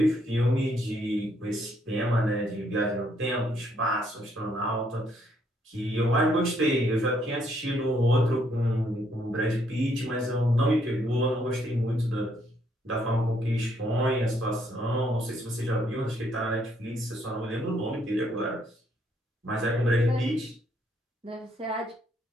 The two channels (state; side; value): normal; both; correlation 0.70